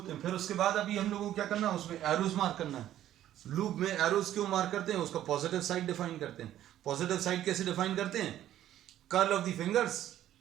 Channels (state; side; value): quieter; left; 12.3 dB